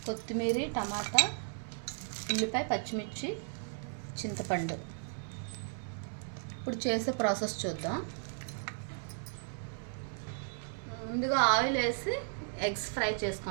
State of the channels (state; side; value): silent; left; 54 dB below the other